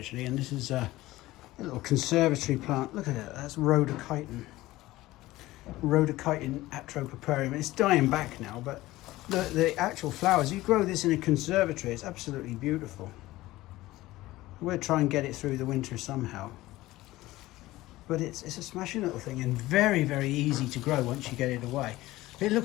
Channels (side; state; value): right; quieter; 17.5 dB